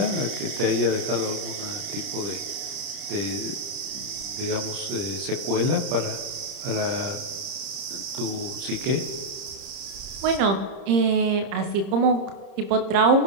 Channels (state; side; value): late; left; 30 ms